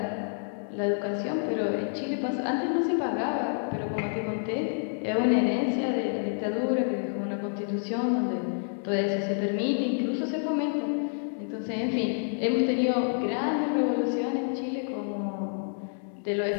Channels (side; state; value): right; silent; digital silence